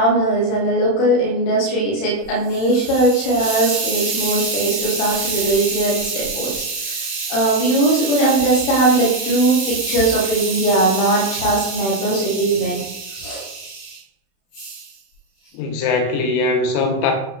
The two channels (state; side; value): late; right; 31 ms